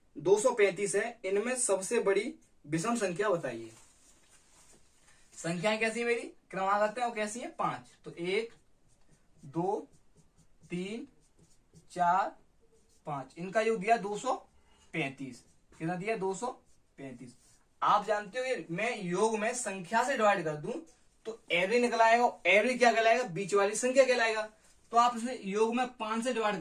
235 है, इनमें सबसे बड़ी विषम संख्या बताइए। संख्याएं कैसी है मेरी क्रमागत है और कैसी है 5, तो 1 2 3 4 5, इनका योग दिया 235, कितना दिया 235। आप जानते हो मैं योग में संख्या से डिवाइड कर दूं तो एवरेज निकल आएगा। एवरेज क्या कहलाएगा? बीच वाली संख्या कहलाएगा। तो आप इसे योग में 5 से डिवाइड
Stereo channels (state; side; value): identical; both; correlation 1.00